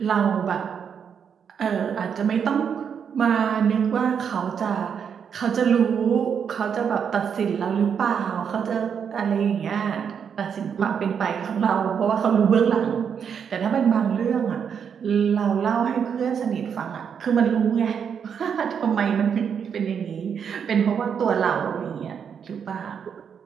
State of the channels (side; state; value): left; quieter; 7.3 dB